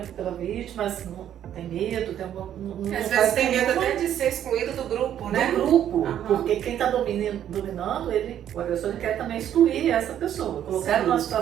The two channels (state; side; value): quieter; left; 10.5 dB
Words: vítima, mas não tem medo, às vezes tem medo até de ser excluído do grupo, né? Do grupo, porque quem está dominando, o agressor ele quer também excluir essa pessoa, colocar numa